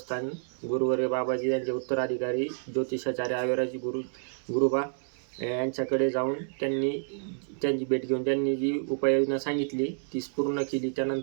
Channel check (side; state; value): left; silent; digital silence